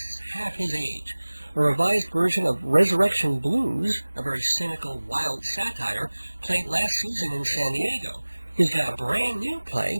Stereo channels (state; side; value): inverted; both; correlation -1.00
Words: half his age. A revised version of Resurrection Blues, a very cynical, wild satire, played last season in San Diego. He's got a brand new